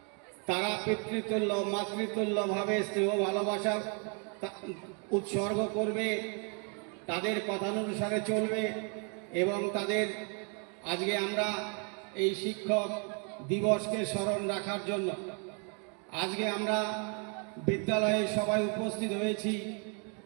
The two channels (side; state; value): left; quieter; 38.3 dB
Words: তারা পিতৃতুল্য মাতৃতুল্যভাবে স্নেহ ভালোবাসা উৎসর্গ করবে, তাদের কথানুসারে চলবে এবং তাদের আজকে আমরা এই শিক্ষক দিবসকে স্মরণ রাখার জন্য আজকে আমরা বিদ্যালয়ে সবাই উপস্থিত হয়েছি।